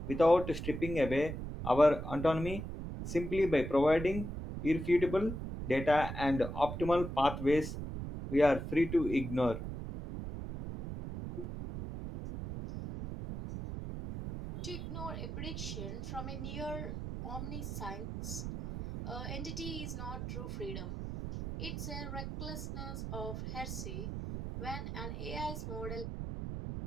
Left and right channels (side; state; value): right; noise; rumble, 6 dB below the sound